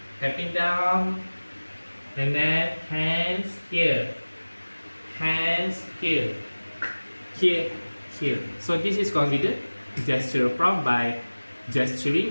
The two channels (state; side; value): inverted; both; correlation -1.00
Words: down, and then hands here, here, here. So this is considered gesture prompt by